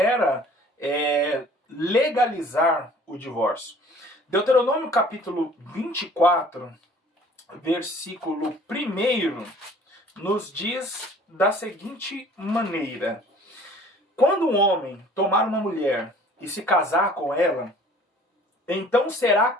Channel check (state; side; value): normal; both; correlation 0.51